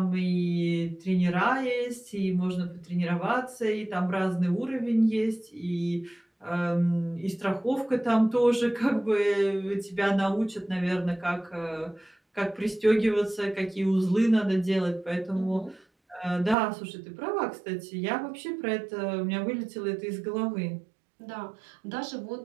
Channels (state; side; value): drops out; left; at 16.6 s